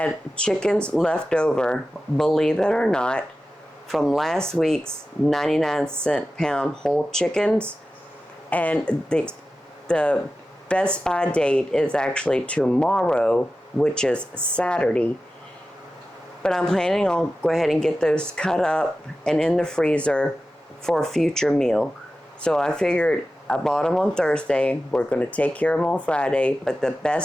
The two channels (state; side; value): normal; both; correlation 0.94